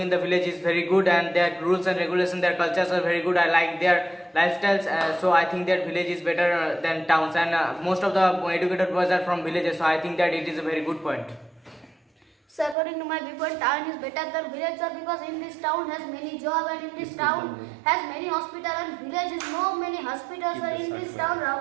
the village is very good, and their rules and regulations, their cultures are very good. I like their lifestyles, so I think that village is better than towns, and most of the educated boys are from villages, so I think that it is a very good point. So according to my viewpoint, town is better than village, sir, because in this town has many job, and in this town has many hospital, and village is no many hospitals are in this town.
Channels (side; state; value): left; drops out; at 12.8 s